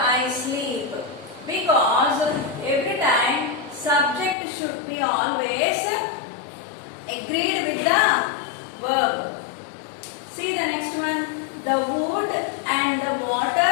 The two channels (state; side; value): drops out; right; at 4.4 s